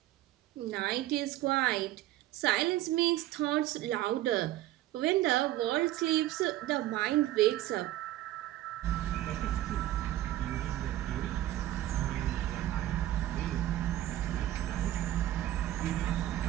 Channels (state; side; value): quieter; left; 14.3 dB